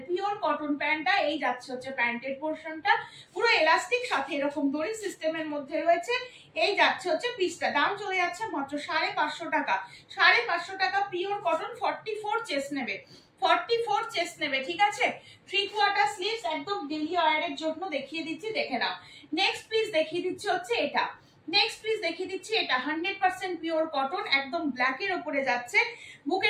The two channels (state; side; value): identical; both; correlation 1.00